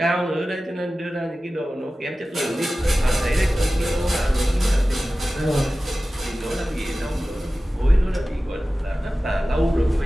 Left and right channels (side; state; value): both; normal; correlation 0.96